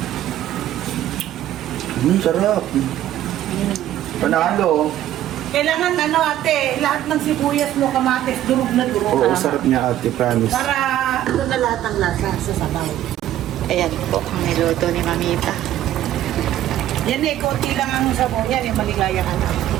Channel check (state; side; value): quieter; left; 12.7 dB